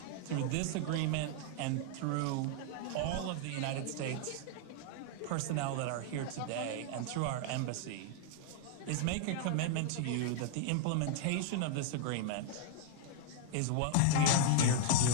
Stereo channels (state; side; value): different; both; correlation 0.00